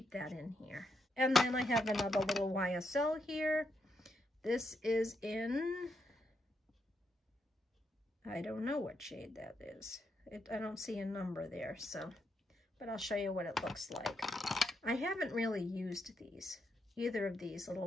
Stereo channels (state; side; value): normal; both; correlation 0.80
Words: that in here. And then I have another little YSL here. This is in, I don't know what shade that is. I don't see a number there, so, but I'll show you what it looks like. I haven't really used these, either of these